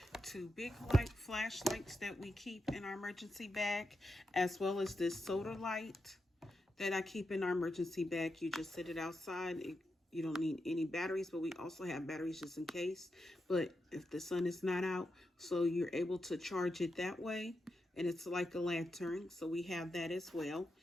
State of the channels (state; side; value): normal; both; correlation 0.87